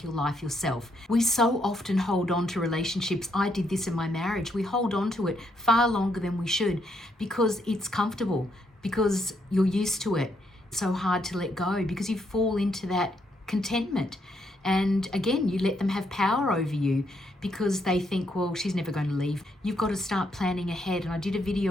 your life yourself. We so often hold on to relationships. I did this in my marriage. We hold on to it far longer than we should because it's comfortable, because you're used to it. It's so hard to let go because you fall into that contentment. And again, you let them have power over you because they think, well, she's never going to leave. You've got to start planning ahead. And I did a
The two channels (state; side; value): normal; both; correlation 0.75